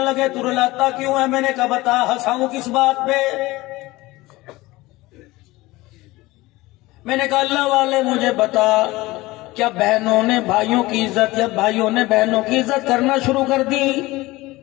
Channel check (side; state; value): right; quieter; 19.9 dB